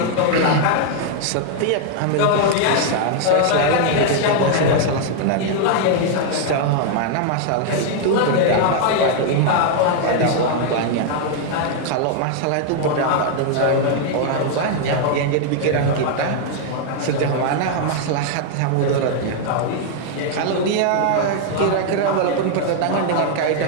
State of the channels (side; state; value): both; different; correlation 0.00